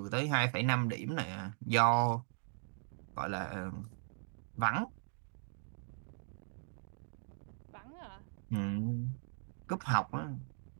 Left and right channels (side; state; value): left; silent; digital silence